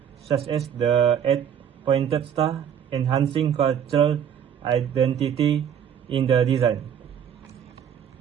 such as the eight-pointed star, enhancing cultural identity in the design.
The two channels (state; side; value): quieter; left; 8.6 dB